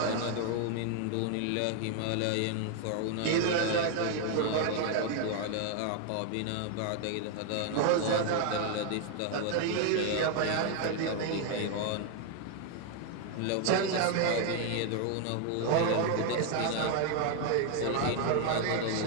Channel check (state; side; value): different; both; correlation 0.00